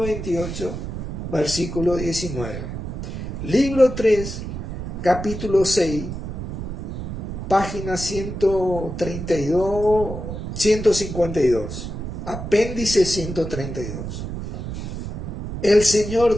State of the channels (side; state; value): right; noise; rumble, 7 dB below the sound